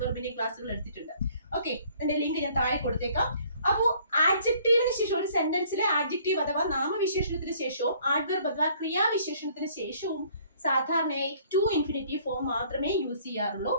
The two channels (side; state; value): both; inverted; correlation -0.59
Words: ക്ലാസ്സുകൾ എടുത്തിട്ടുണ്ട്. ഓക്കെ, എന്റെ ലിങ്ക് ഞാൻ താഴെ കൊടുത്തേക്കാം. അപ്പോൾ ആഡ്ജക്റ്റീവിന് ശേഷം, ഒരു സെന്റൻസിലെ ആഡ്ജക്റ്റീവ് അഥവാ നാമവിശേഷണത്തിന് ശേഷവും ആഡ്വെർബ് അഥവാ ക്രിയാവിശേഷണത്തിന് ശേഷവും സാധാരണയായി ടു ഇൻഫിനിറ്റീവ് ഫോം മാത്രമേ യൂസ് ചെയ്യാറുള്ളൂ.